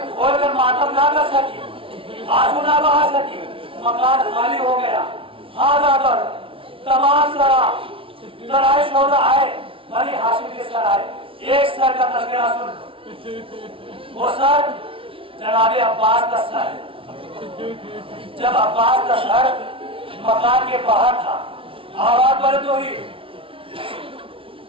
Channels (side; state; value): left; late; 0.26 ms